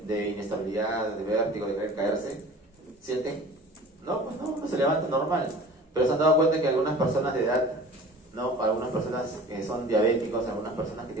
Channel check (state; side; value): normal; both; correlation 0.43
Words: inestabilidad, de vértigo, de querer caerse? ¿Sienten? No, pues no se levanta normal. Pero se han dado cuenta que algunas personas de edad, ¿no? Algunas personas que son diabéticos, algunas personas que